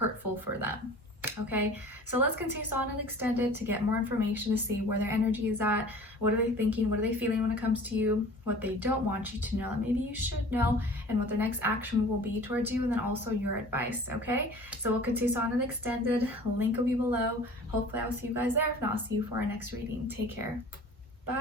for them. Okay, so let's continue on and extend it to get more information, to see where their energy is at, what are they thinking, what are they feeling when it comes to you, what they don't want you to know that maybe you should know, and what their next action will be towards you, and then also your advice. Okay, so we'll continue on and extended. Link will be below. Hopefully I'll see you guys there. If not, I'll see you for our next reading. Take care.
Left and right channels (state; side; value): normal; both; correlation 0.44